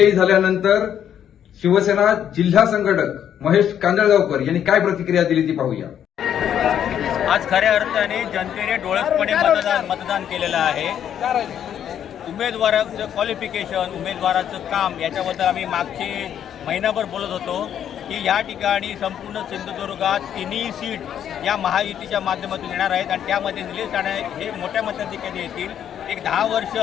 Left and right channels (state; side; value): quieter; right; 9.6 dB